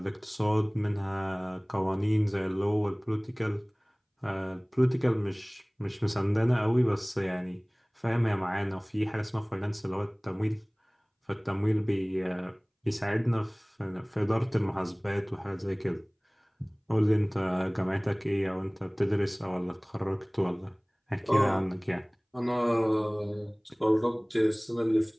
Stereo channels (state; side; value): identical; both; correlation 1.00